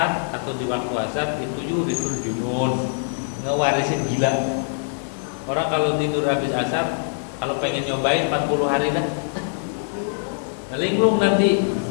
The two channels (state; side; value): silent; right; digital silence